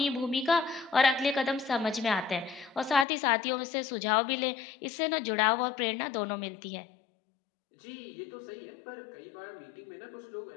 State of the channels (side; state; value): right; drops out; at 3.1 s